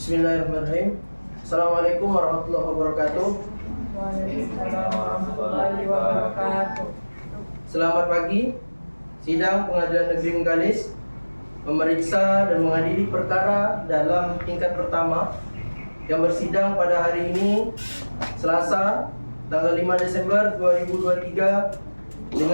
Bismillahirrahmanirrahim. Assalamualaikum warahmatullahi wabarakatuh. Waalaikumsalam warahmatullahi wabarakatuh. Selamat pagi. Sidang Pengadilan Negeri Bengkalis memeriksa dan mengadili perkara dalam tingkat pertama yang bersidang pada hari ini Selasa tanggal 5 Desember 2023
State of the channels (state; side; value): inverted; both; correlation -1.00